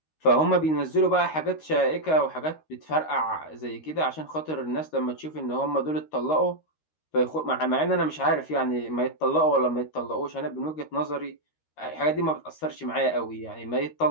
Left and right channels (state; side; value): late; right; 13 ms